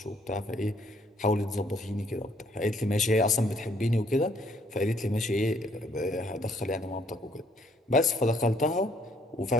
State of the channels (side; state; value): both; normal; correlation 0.65